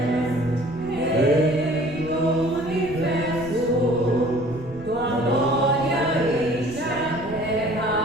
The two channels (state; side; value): noise; right; rumble, 16 dB below the sound